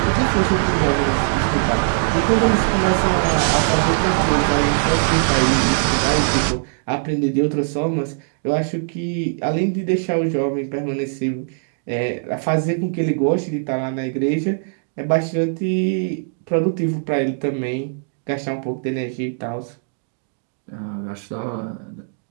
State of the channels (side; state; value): left; silent; digital silence